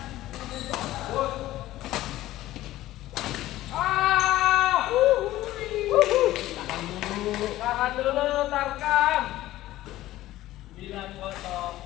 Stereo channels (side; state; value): right; quieter; 15.4 dB